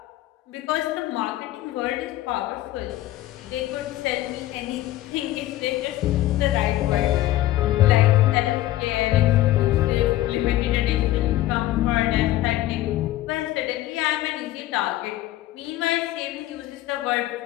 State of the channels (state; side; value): quieter; right; 15.2 dB